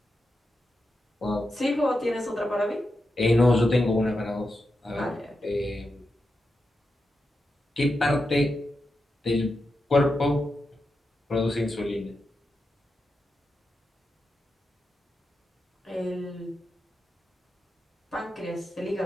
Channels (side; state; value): both; normal; correlation 0.88